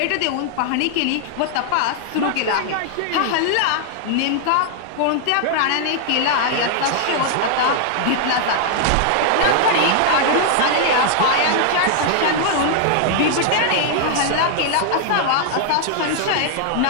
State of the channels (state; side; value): different; both; correlation 0.00